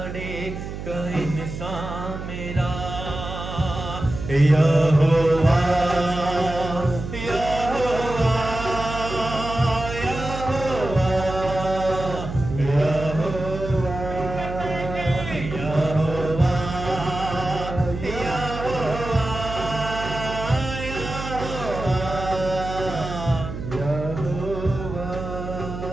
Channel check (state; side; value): noise; right; hum, 8 dB below the sound